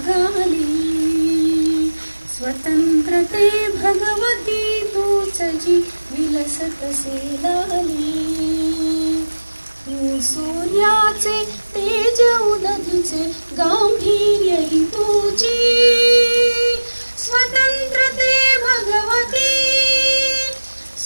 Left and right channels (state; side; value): inverted; both; correlation -1.00